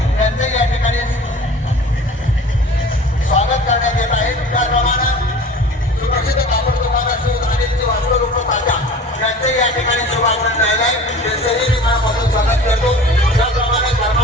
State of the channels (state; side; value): normal; both; correlation 0.41